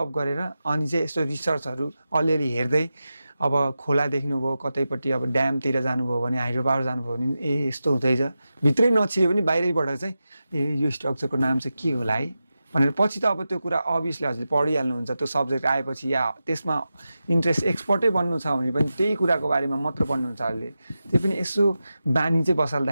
गरेर अनि चाहिँ यस्तो रिसर्चहरू अलिअलि हेर्दै अब खोला देख्नुभयो, कतैपट्टि अब ड्यामतिर जानुभयो भने, हाइड्रो पावर जानुभयो भने यस्तो हुँदैछ, भित्रै नछिए पनि बाहिरैबाट चाहिँ यो स्ट्रक्चरको नाम चाहिँ के होला है भनेर पछि त अब त्यो कुरा अभियसली हजुरले पढिहाल्नुहुन्छ। त्यो सब्जेक्ट आएपछि या त्यसमा इन्ट्रेस्ट एक्सपर्टै बन्नु छ भने पनि त्यही कुराको बारेमा मात्र पढ्नुहुन्छ हजुरले। त्यो पनि यसो बानी चाहिँ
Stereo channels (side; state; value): both; inverted; correlation -0.92